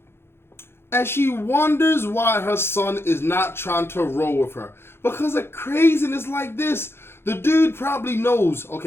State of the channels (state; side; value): late; right; 0.12 ms